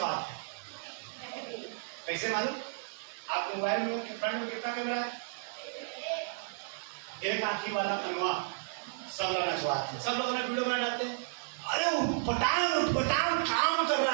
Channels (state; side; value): silent; left; digital silence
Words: कैसे मालूम? आप मोबाइल में फ्रंट में कितना कैमरा है? एक आंखी वाला कनवा सब लोग नचवाते हैं, सब लोग अपना वीडियो बना डालते हैं। अरे पटांग काम कर